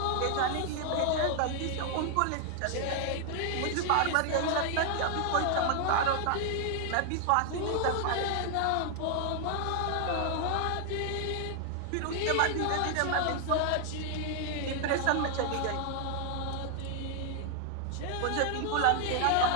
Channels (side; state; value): both; different; correlation 0.00